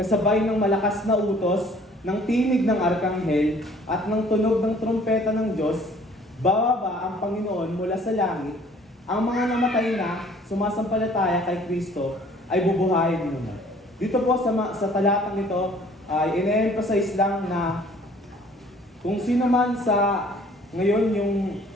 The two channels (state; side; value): normal; both; correlation 0.55